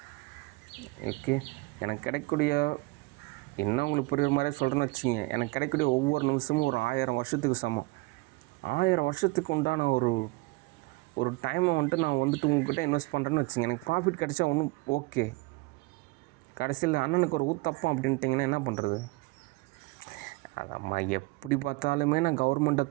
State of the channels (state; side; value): quieter; left; 23.5 dB